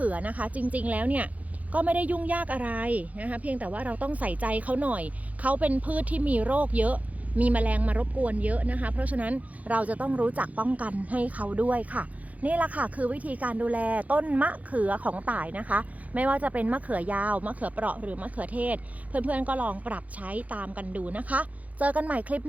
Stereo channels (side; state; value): left; late; 0.072 ms